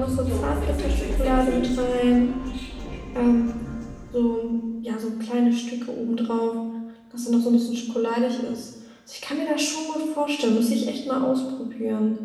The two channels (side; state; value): both; identical; correlation 1.00